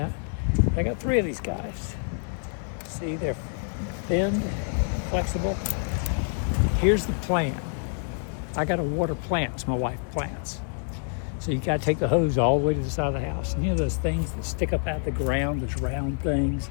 I got 3 of these guys. See, they're bend, flexible. Here's the plan. I got to water plants. My wife plants. So you got to take the hose all the way to the side of the house. And you know those things that stick up out the ground, those round things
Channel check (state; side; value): silent; right; 60 dB below the other